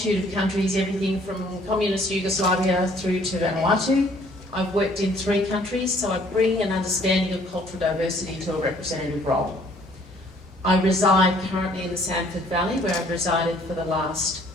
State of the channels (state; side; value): normal; both; correlation 0.60